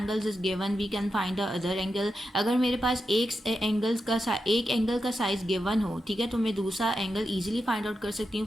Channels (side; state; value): both; normal; correlation 0.88